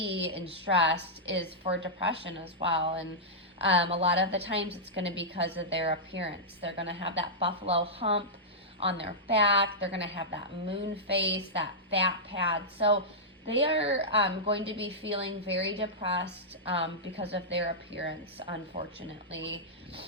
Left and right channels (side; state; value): both; normal; correlation -0.11